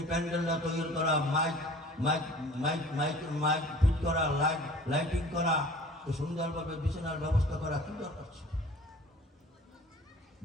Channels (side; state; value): both; normal; correlation 0.46